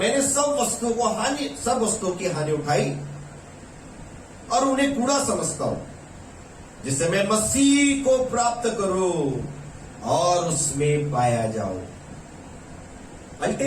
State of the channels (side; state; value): both; identical; correlation 1.00